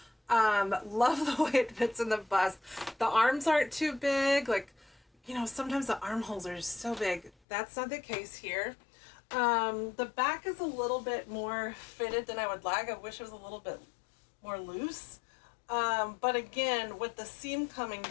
Love the way it fits in the bust. The arms aren't too big. Like, you know, sometimes the armholes are so big. That's not the case here. The back is a little bit more fitted than I would like. I wish it was a little bit more loose. But again, with the seam coming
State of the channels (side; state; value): right; drops out; at 7.3 s